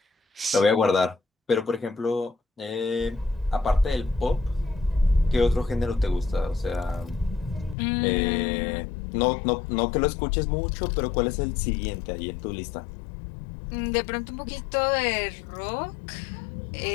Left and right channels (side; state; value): right; drops out; at 7.8 s